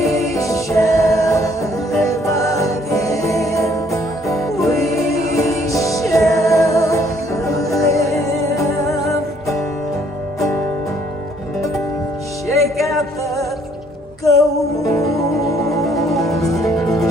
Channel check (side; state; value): both; normal; correlation 0.64